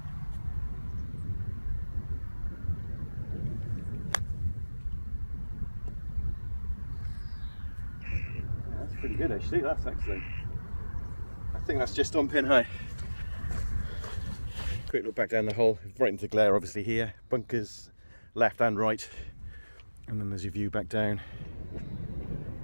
That's pretty good actually, that's excellent. I think that's just on pin high. Quick look back down the hole, right into the glare obviously here. Bunkers left and right. And then there's your view back down.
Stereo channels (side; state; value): both; inverted; correlation -1.00